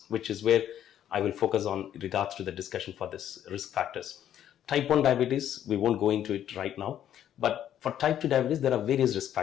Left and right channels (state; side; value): quieter; right; 10.7 dB